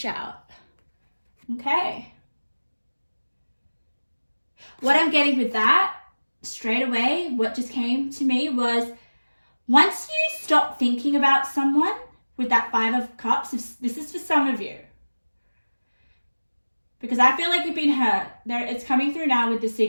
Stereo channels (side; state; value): both; inverted; correlation -1.00